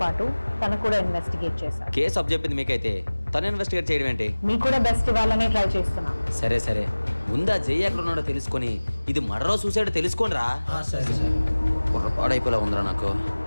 పాటు తను కూడా ఇన్వెస్టిగేట్ చేశారు. కేసు అప్ చెప్పింది మీకైతే తను ఇన్వెస్టిగేట్ చేయడం ఏంటి? మీకు కూడా బెస్ట్ ఇవ్వాలని ట్రై చేస్తున్నా. సరే సరే, ముందా జయ ఎక్కడ ఉన్నాడో తెలుసుకొని ఇది మర్డరా సూసైడ్ తెలుసుకోండి రా. సరే సరే. బుర్రపాడైపోలా ఉందిరా నాకు.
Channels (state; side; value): inverted; both; correlation -1.00